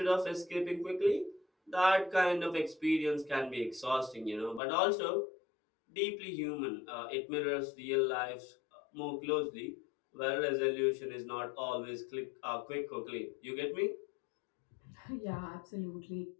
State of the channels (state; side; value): drops out; right; at 4.6 s